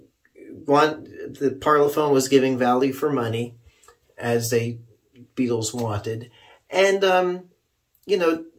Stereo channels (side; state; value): both; identical; correlation 1.00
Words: the Parlophone was giving value for money, as they Beatles wanted. And, you know,